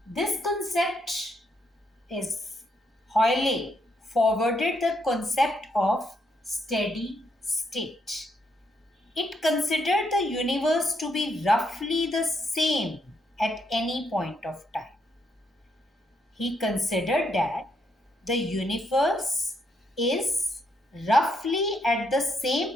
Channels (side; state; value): both; normal; correlation 0.76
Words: This concept is Hoyle forwarded the concept of steady state. It considered the universe to be roughly the same at any point of time. He considered that the universe is roughly at the